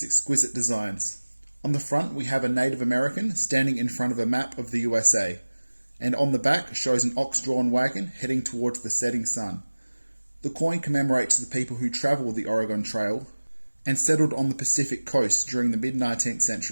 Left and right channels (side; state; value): both; inverted; correlation -1.00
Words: exquisite designs. On the front we have a Native American standing in front of a map of the USA, and on the back shows an ox-drawn wagon heading towards the setting sun. The coin commemorates the people who travelled the Oregon Trail and settled on the Pacific coast during the mid-19th